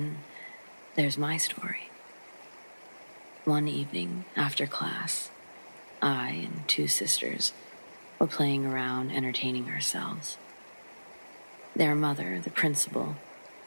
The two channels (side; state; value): both; inverted; correlation -1.00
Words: there's my story. One evening after class, I and 2 sisters were playing around, entertaining ourselves. Their mother, the principal,